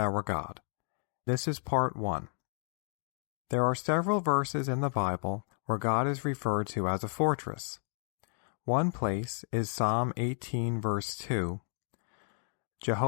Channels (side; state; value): right; silent; 56 dB below the other